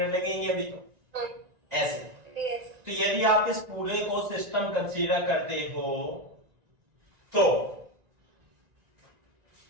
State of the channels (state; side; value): late; left; 1.9 ms